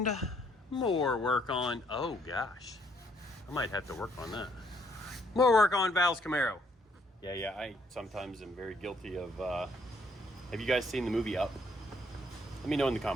more work on, oh gosh, I might have to work on that. More work on Val's Camaro. Yeah, I sometimes am very guilty of, have you guys seen the movie Up? Let me know in the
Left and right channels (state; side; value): normal; both; correlation 0.68